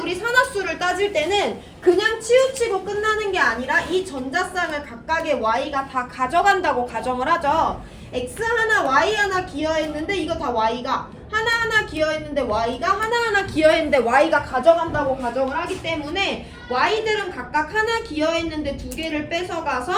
산화수를 따질 때는 그냥 치우치고 끝나는 게 아니라 이 전자쌍을 각각의 Y가 다 가져간다고 가정을 하죠. X 하나 Y 하나 기여했는데 이거 다 Y가 하나하나 기여했는데 Y가 하나하나 기여했는데 Y가 가져간다고 가정을 하기 때문에 Y들은 각각 하나 기여했는데 2개를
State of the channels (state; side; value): identical; both; correlation 1.00